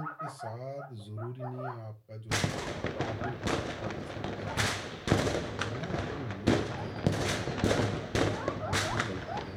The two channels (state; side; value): identical; both; correlation 1.00